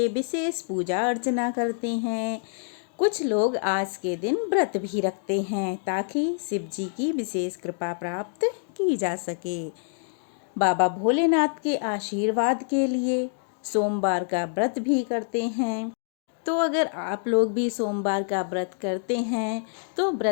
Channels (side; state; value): right; silent; digital silence